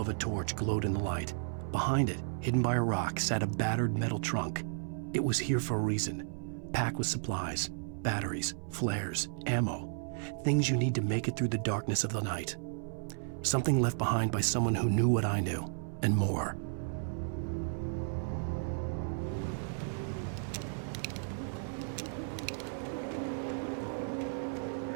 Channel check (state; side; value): silent; left; 55 dB below the other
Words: a torch glowed in the light. Behind it, hidden by a rock, sat a battered metal trunk. It was here for a reason, packed with supplies, batteries, flares, ammo, things you need to make it through the darkness of the night. Something left behind by someone who knew what I knew, and more.